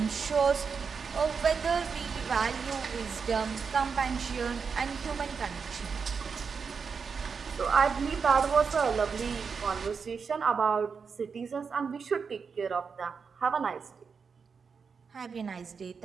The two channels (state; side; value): quieter; left; 5.7 dB